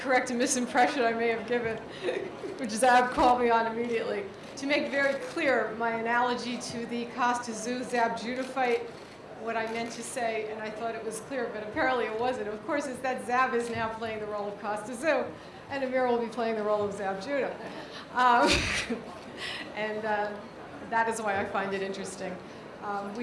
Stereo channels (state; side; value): identical; both; correlation 1.00